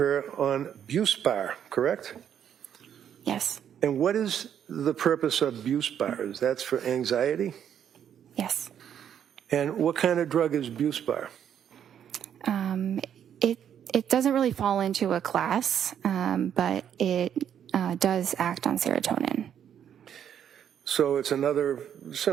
on Buspar, correct? Yes. And what is the purpose of Buspar? Is that for anxiety? Yes. And what kind of drug is Buspar? It doesn't really fall into a class, but it does act on serotonin. So it's another,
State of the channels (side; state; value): left; quieter; 9.2 dB